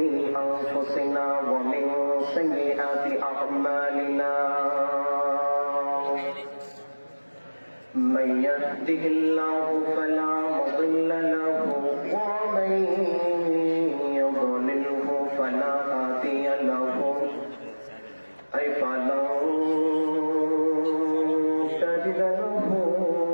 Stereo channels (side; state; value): both; inverted; correlation -1.00